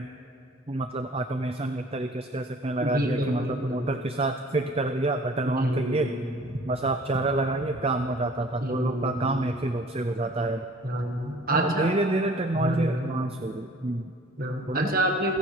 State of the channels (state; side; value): normal; both; correlation 0.51